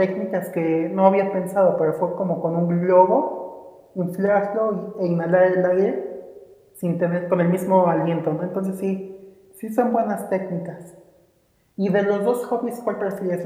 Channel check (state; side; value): identical; both; correlation 1.00